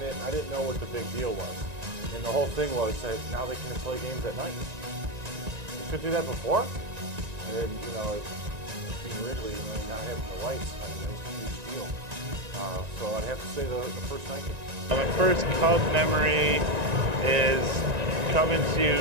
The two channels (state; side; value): late; left; 1.9 ms